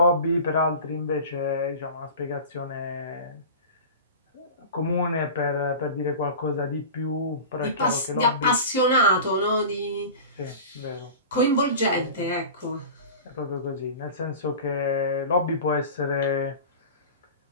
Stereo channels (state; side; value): inverted; both; correlation -0.35